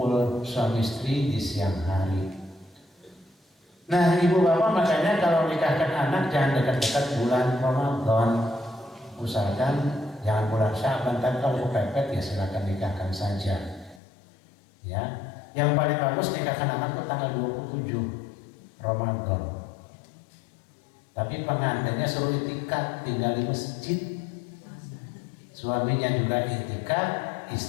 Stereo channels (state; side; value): drops out; right; at 14.0 s